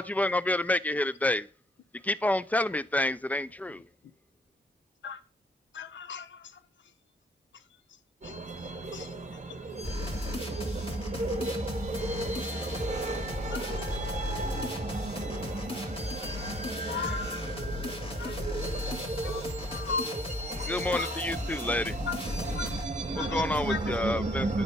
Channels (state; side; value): normal; both; correlation 0.62